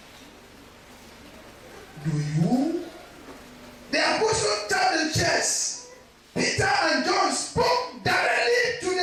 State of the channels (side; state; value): both; identical; correlation 1.00